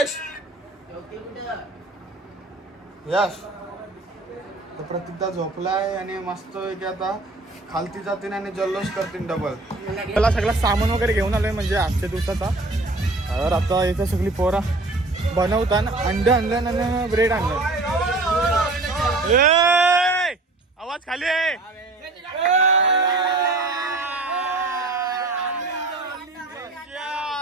यश तर प्रतीकदा झोपलाय आणि मस्त की आता खालती जातील आणि जल्लोष करतील डबल. त्याला सगळं सामान वगैरे घेऊन आलोय म्हणजे आजच्या दिवसाचा. तर आता इथं सगळी पोरा बनवताना अंड आणलं आणि ब्रेड आणलं. आवाज खाली आहे.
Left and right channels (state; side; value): quieter; left; 3.1 dB